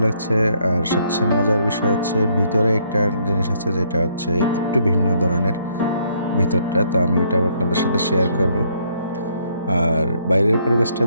লাগছে। আর সবচেয়ে মজার বিষয় হচ্ছে ভিতরে একটা জিনিস আছে যেটা হচ্ছে একটু ভিন্ন ধরনের ভিতরটা। তো আমি ওইটাও আপনাদের সাথে শেয়ার করব। আর বাইরের পরিবেশটা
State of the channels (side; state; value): both; inverted; correlation -0.69